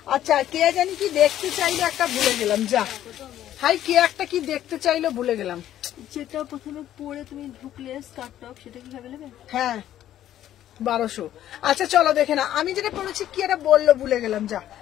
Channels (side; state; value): right; quieter; 12.0 dB